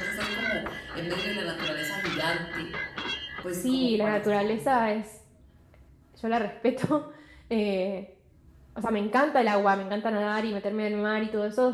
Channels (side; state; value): both; identical; correlation 1.00